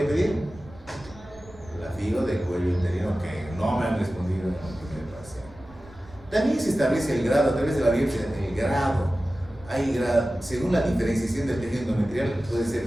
pedir? La FIGO de cuello uterino, que no me han respondido en el primer paciente. También se establece el grado a través de la biopsia, el grado. Hay grado, según la diferenciación del tejido endometrial, puede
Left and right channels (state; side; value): noise; right; rumble, 24 dB below the sound